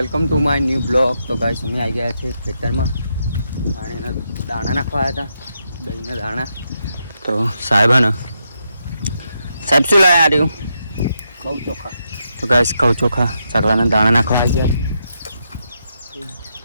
to my new blog. તો ગાઈસ અમે આવી ગયા છે ખેતરમાં અને દાણા નાખવા આવ્યા હતા, દહીંના દાણા. તો સાહેબ શું લાવ્યા રહ્યું? ઘઉં ચોખા. તો ગાઈસ ઘઉં ચોખા ચકલાના દાણા નાખવા આવી ગયા છે.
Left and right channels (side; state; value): both; inverted; correlation -0.82